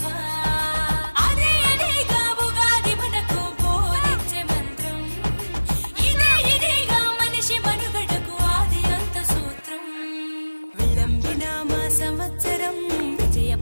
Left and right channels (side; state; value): both; inverted; correlation -1.00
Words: అదే అదేగా ఉగాది మనకు బోధించే మంత్రం ఇదేగా మనిషి మనుగడకు ఆది అంత సూత్రం విళంబిన మా సంవత్సరం విజయ